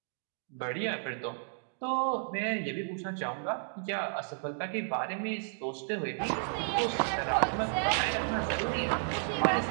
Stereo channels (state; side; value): silent; left; digital silence